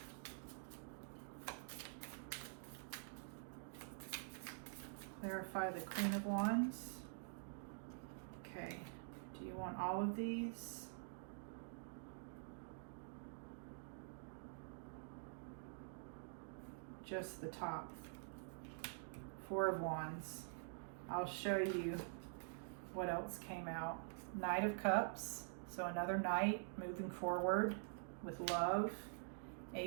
Clarify the Queen of Wands. Okay. Do you want all of these? just the top. Four of Wands. I'll show you what else came out. Knight of Cups, so another knight moving forward with love.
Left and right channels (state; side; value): silent; left; digital silence